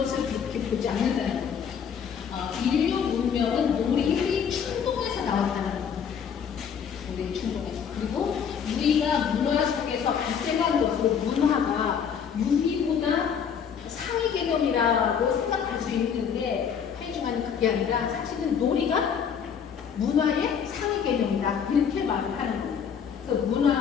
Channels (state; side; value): quieter; right; 7.4 dB